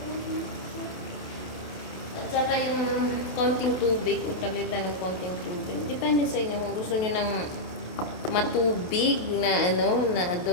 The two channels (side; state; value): right; late; 27 ms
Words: At saka yung konting tubig, palitan ng konting tubig. Depende sa inyo kung gusto nyo ng matubig na na